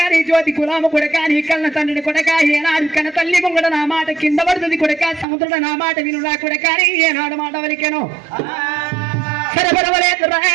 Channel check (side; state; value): left; drops out; at 5.2 s